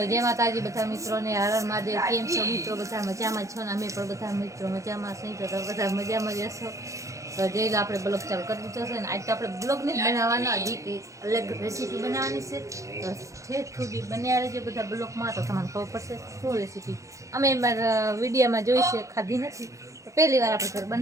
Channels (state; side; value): late; left; 0.15 ms